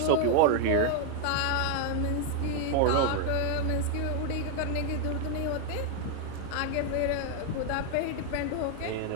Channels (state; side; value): different; both; correlation 0.01